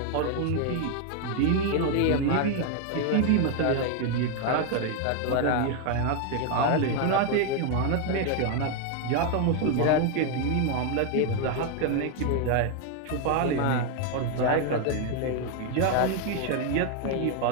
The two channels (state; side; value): different; both; correlation 0.01